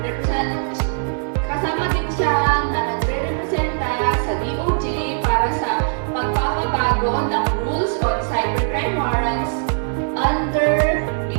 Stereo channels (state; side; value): silent; left; digital silence